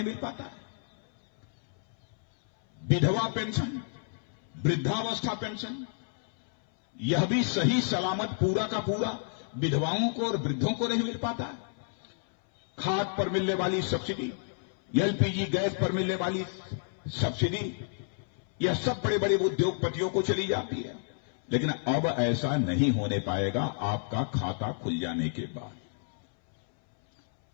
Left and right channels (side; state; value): right; silent; 58 dB below the other